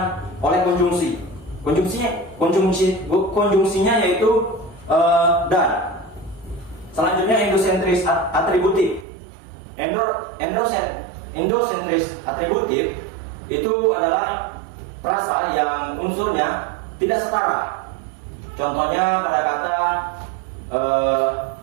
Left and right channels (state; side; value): drops out; left; at 9.1 s